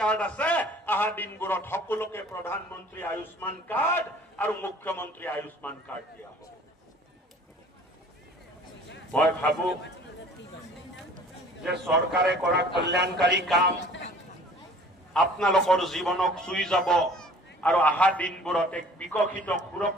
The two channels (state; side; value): normal; both; correlation 0.50